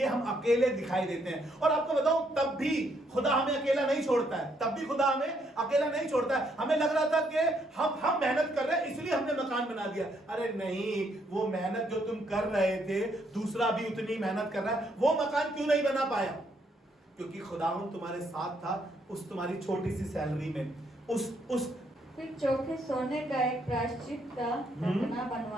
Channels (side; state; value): both; normal; correlation 0.72